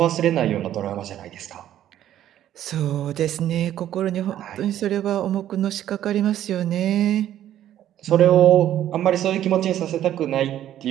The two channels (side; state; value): left; quieter; 11.8 dB